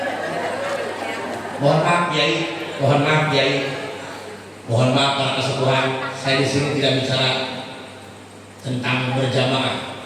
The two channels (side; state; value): both; identical; correlation 1.00